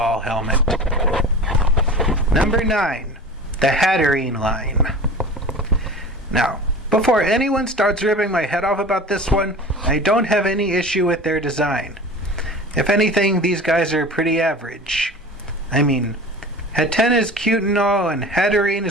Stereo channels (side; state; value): both; normal; correlation 0.36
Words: helmet. Number 9, the Hatterene line. Now, before anyone starts ripping my head off about this one, I don't have any issue with their design. If anything, these guys are pretty average. Hatena is cute and all, and Hatterene